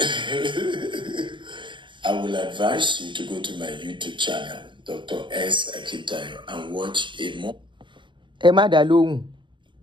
I will advise you to go to my YouTube channel, Dr. S. Akitayo, and watch a more. Emma Dalong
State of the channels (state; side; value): late; left; 0.23 ms